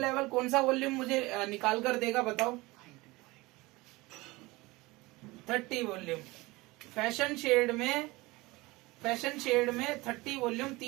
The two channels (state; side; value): quieter; left; 21.9 dB